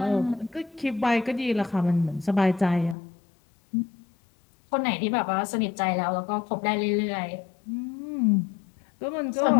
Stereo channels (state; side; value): drops out; right; at 3.0 s